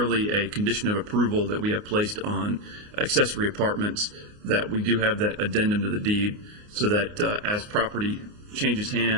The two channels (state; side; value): late; left; 29 ms